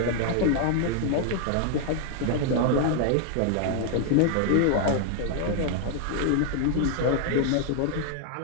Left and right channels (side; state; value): both; different; correlation 0.00